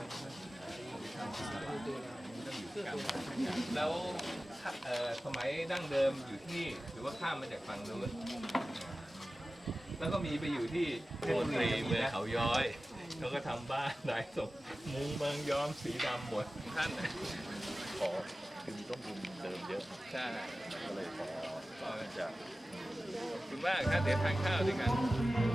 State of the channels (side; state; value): both; normal; correlation 0.96